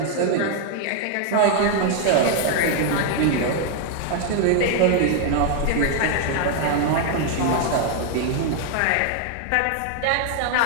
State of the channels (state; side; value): different; both; correlation 0.00